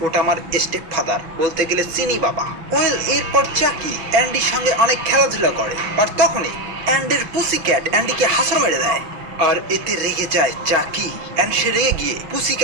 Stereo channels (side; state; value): left; late; 6.0 ms